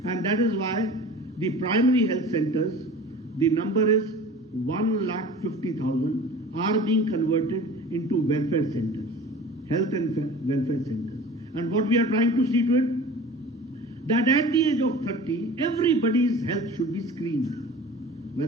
And that is why the primary health centers, the number is 1,50,000, are being converted into welfare centers, health and welfare centers. And what we are trying to see to it, that at the age of 30, everybody's health should be screened,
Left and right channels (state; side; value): normal; both; correlation 0.40